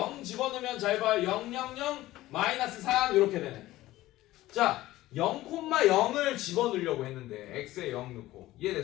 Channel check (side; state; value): right; quieter; 16.4 dB